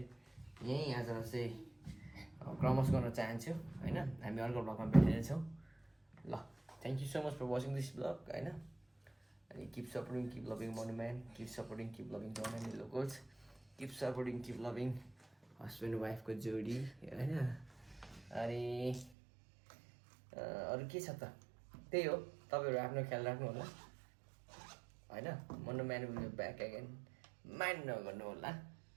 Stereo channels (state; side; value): drops out; left; at 19.1 s